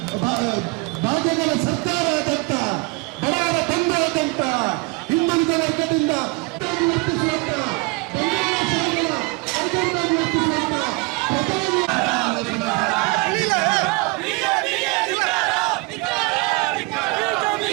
ಭಾಗ್ಯಗಳ ಸರ್ಕಾರದಂತ ಬಡವರ ಬಂಧುವಾದಂತ ಹಿಂದುಳಿದ ವರ್ಗದಿಂದ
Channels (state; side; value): quieter; left; 26.5 dB